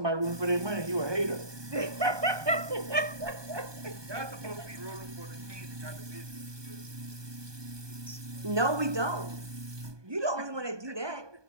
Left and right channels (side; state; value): left; late; 1.2 ms